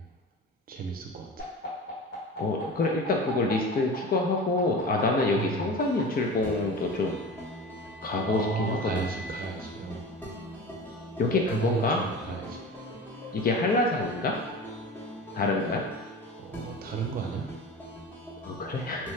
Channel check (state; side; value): normal; both; correlation 0.33